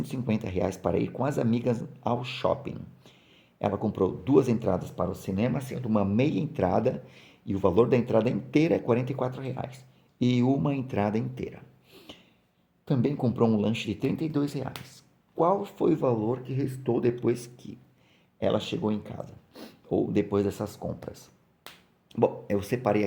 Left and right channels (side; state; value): both; identical; correlation 1.00